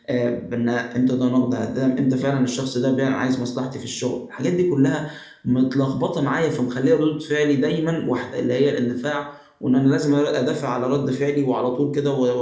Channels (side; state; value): both; identical; correlation 1.00